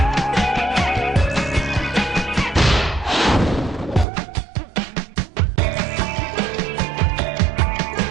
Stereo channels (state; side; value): drops out; left; at 4.0 s